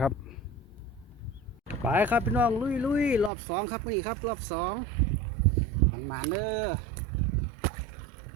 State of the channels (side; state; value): left; drops out; at 3.3 s